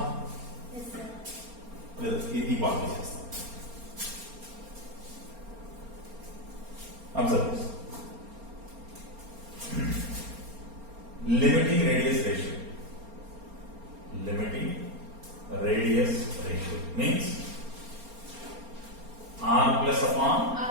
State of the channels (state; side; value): late; left; 4.3 ms